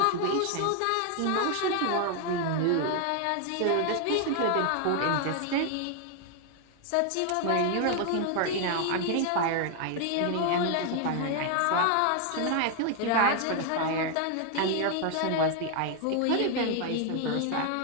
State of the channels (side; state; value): both; different; correlation 0.00